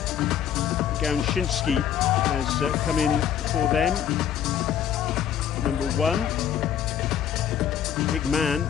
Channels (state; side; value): quieter; right; 9.4 dB